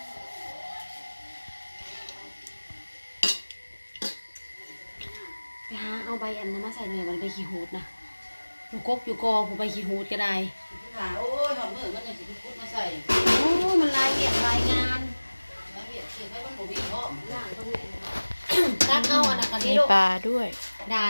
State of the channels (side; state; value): both; inverted; correlation -1.00